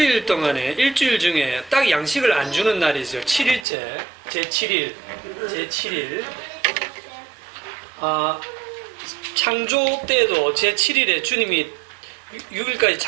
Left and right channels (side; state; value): left; drops out; at 3.7 s